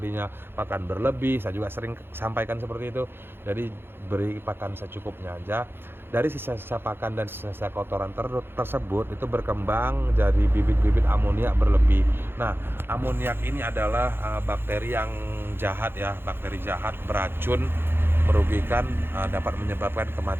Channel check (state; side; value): late; left; 0.11 ms